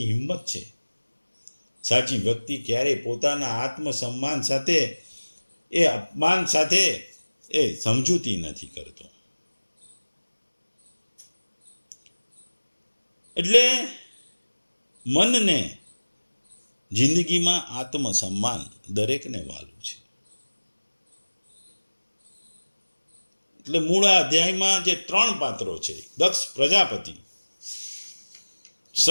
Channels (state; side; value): inverted; both; correlation -1.00